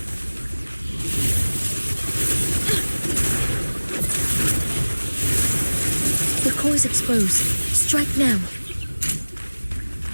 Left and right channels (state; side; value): inverted; both; correlation -1.00